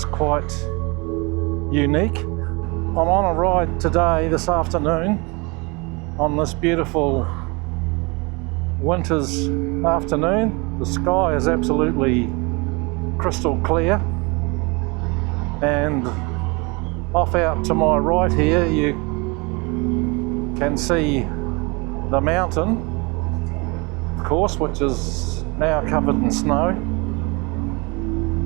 quite unique. I'm on a ride today, this afternoon, on this beautiful winter's afternoon. The sky is absolutely crystal clear, and off out to my right here you can see the mountain, of course, which is now covered in snow.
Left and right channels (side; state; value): left; quieter; 28.1 dB